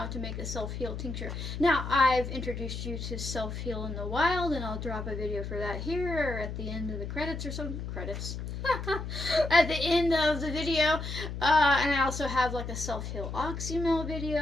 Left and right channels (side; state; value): left; noise; hum, 6 dB below the sound